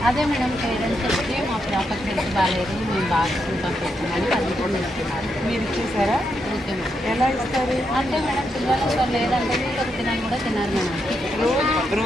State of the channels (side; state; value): both; normal; correlation 0.82